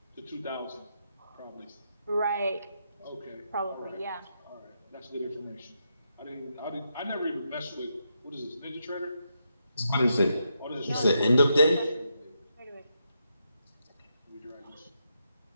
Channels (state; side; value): inverted; both; correlation -0.81